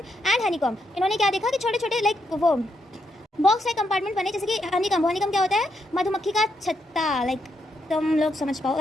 honeycomb. इन्होंने क्या देखा कि छोटे छोटे लाइक वो बॉक्स लाइक कंपार्टमेंट बने, जैसे कि हनीकॉम। हनीकॉम क्या होता है, मधुमक्खी का छत्ता, लाइक तुम लोग समझ पाओ,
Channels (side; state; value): both; normal; correlation 0.79